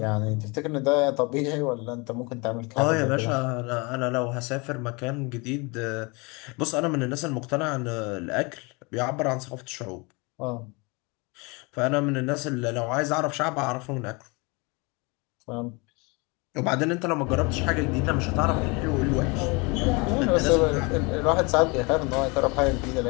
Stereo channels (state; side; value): quieter; right; 28.4 dB